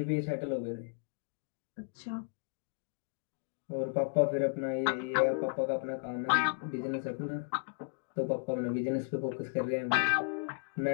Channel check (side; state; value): right; silent; digital silence